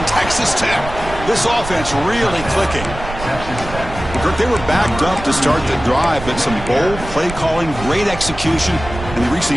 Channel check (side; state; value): right; noise; rumble, 10 dB below the sound